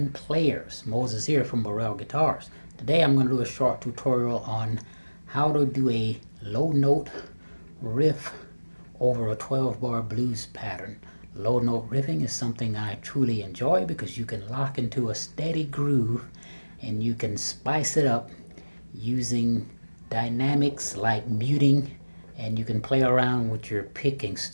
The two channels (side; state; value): both; inverted; correlation -1.00